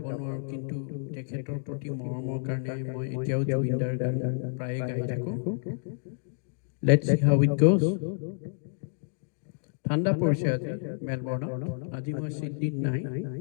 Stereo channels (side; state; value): right; silent; digital silence